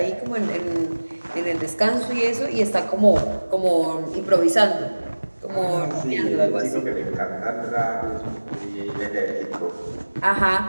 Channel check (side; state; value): both; inverted; correlation -1.00